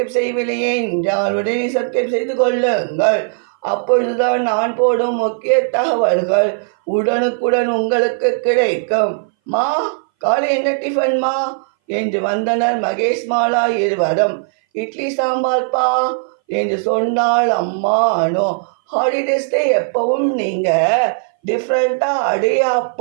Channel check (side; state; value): left; silent; 61 dB below the other